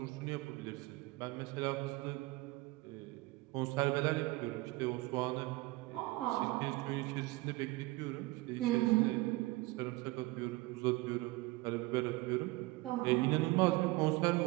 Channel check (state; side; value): quieter; left; 21.7 dB